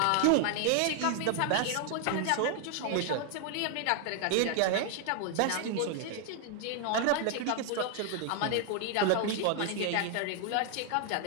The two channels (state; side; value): different; both; correlation 0.00